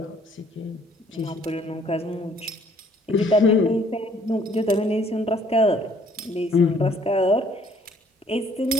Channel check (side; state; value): both; normal; correlation 0.61